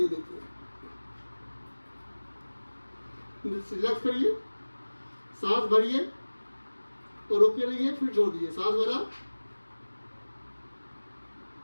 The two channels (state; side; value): inverted; both; correlation -1.00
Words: देखिए, रिलैक्स करिए, सांस भरिए और रोके रहिए, फिर छोड़ दीजिए, सांस भरा,